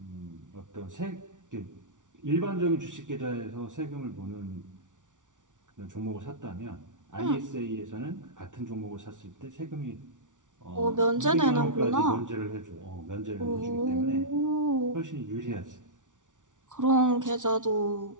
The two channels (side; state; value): left; late; 0.87 ms